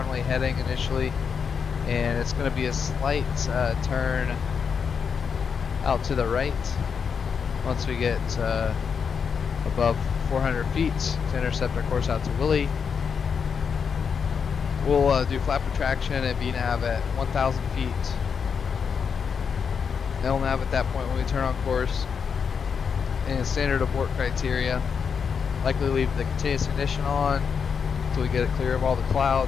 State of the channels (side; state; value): right; quieter; 6.4 dB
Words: heading initially, and it's going to be a slight turn out to the right once we get above 400 feet to intercept our course out to Willie. We'll do flap retraction and VNAV at 1,000 feet. LNAV at that point when we turn on course, and standard abort criteria. Likely leave the continuous ignition on until we get it clear of all the